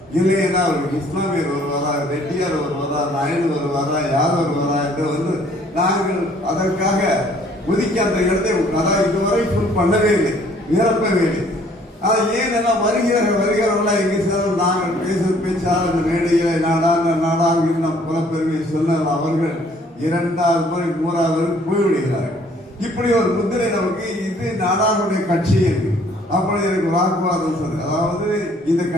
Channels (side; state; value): both; normal; correlation 0.60